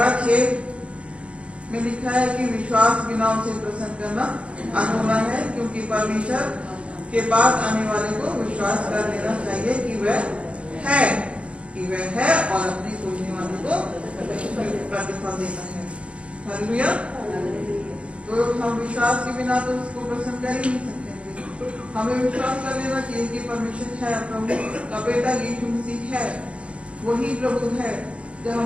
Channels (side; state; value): left; late; 0.060 ms